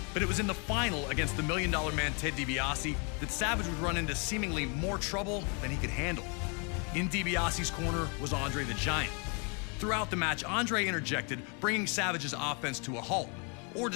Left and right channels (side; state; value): right; quieter; 35.2 dB